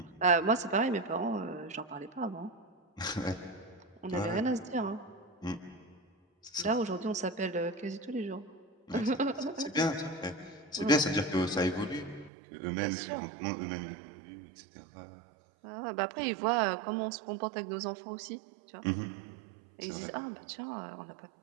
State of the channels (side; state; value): left; drops out; at 12.3 s